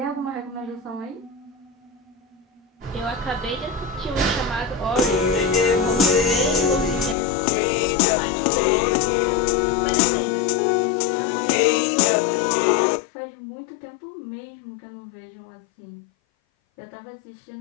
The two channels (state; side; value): drops out; right; at 7.2 s